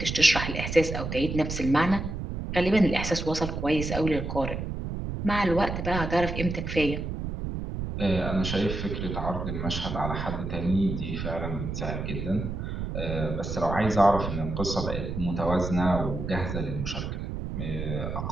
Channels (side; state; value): right; noise; rumble, 4 dB below the sound